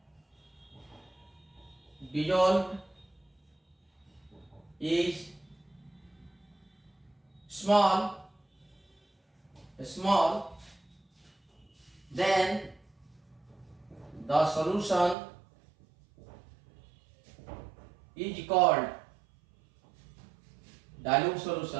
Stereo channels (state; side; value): drops out; left; at 15.2 s